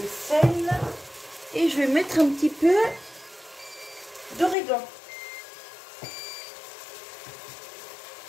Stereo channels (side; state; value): right; drops out; at 4.5 s